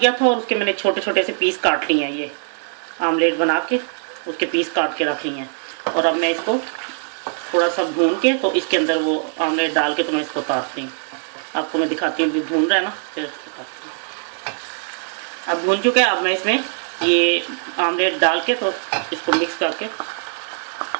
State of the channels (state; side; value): silent; left; 58 dB below the other